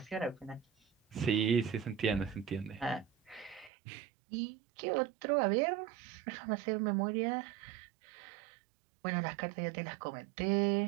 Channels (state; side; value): drops out; left; at 3.7 s